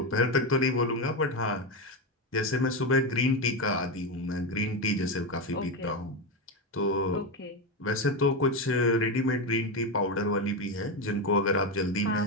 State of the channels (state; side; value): normal; both; correlation 0.12